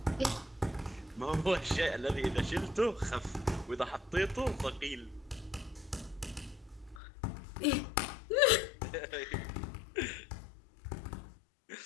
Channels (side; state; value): right; drops out; at 7.0 s